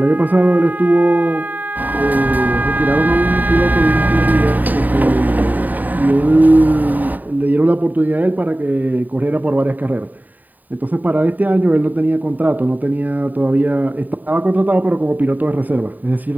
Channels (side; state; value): left; late; 0.085 ms